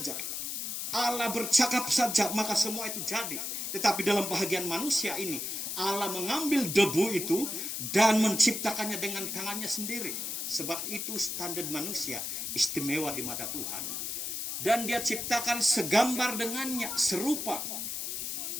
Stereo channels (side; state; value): left; noise; hiss, 3 dB below the sound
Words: Allah bercakap saja, maka semua itu jadi. Tetapi dalam bahagian manusia ini, Allah mengambil debu itu dan menciptakannya dengan tangannya sendiri. Sebab itu standar manusia istimewa di mata Tuhan. Dan dia ciptakan segambar dengannya, serupa.